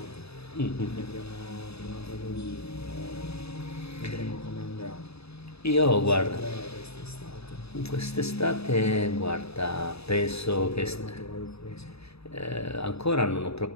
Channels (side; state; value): right; late; 0.79 ms